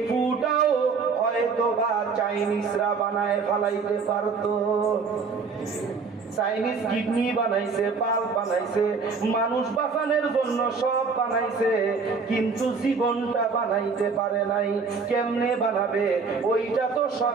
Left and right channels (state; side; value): quieter; left; 5.0 dB